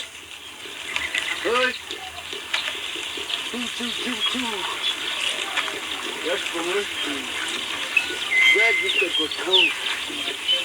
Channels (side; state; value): both; identical; correlation 1.00